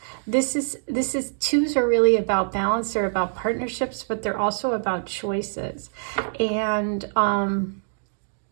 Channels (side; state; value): left; silent; digital silence